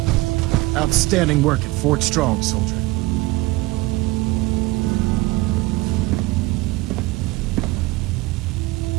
Outstanding work at Fort Strong, soldier.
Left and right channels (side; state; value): left; quieter; 20.8 dB